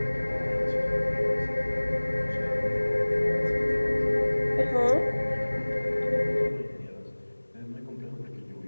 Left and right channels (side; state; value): both; inverted; correlation -1.00